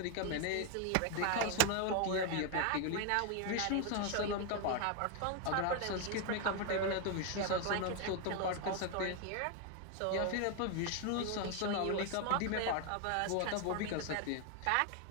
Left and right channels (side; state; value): both; different; correlation 0.01